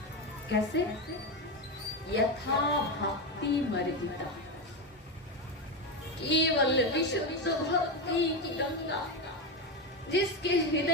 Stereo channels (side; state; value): both; normal; correlation 0.13